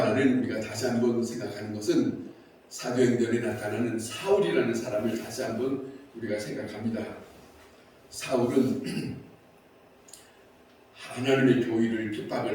우리가 다시 한번 생각하는 것은 사도행전에 나타나는 사울이라는 사람을 다시 한번 우리가 생각합니다. 사울은 하나님의 교회를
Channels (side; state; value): both; identical; correlation 1.00